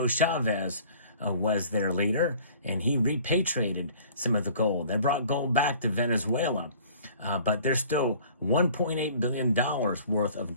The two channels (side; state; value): both; inverted; correlation -0.50